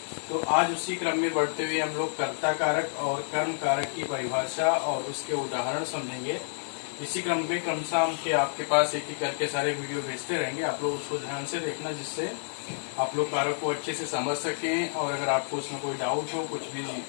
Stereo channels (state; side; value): silent; right; digital silence